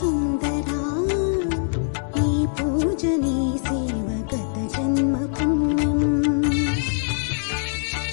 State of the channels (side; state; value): right; silent; digital silence